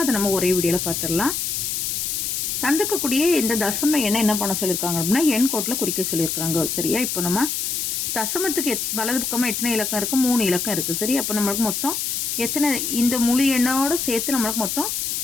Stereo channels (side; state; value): left; noise; hiss, 1 dB below the sound